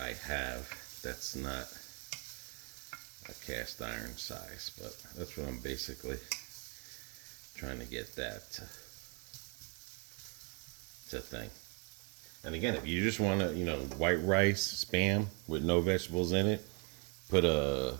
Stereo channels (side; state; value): left; quieter; 36.1 dB